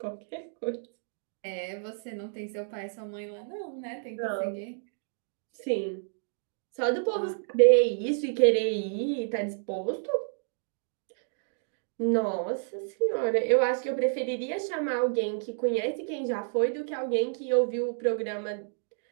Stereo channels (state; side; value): silent; left; digital silence